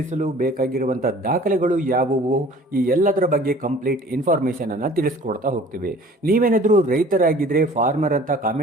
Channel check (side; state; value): both; normal; correlation 0.48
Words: ಬೇಕಾಗಿರುವಂತಹ ದಾಖಲೆಗಳು ಯಾವುವು, ಈ ಎಲ್ಲದರ ಬಗ್ಗೆ ಕಂಪ್ಲೀಟ್ ಇನ್ಫಾರ್ಮೇಶನ್ ಅನ್ನ ತಿಳಿಸ್ಕೊಡ್ತಾ ಹೋಗ್ತೀವಿ. ನೀವೇನಾದ್ರೂ ರೈತರಾಗಿದ್ರೆ ಫಾರ್ಮರ್ ಅಂತ